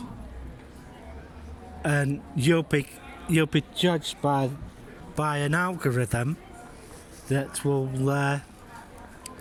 and you'll be judged by an algorithm that will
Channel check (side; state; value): both; identical; correlation 1.00